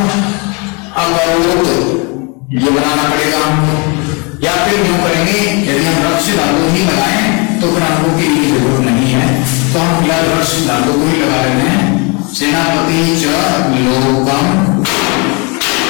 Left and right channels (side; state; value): right; quieter; 31.0 dB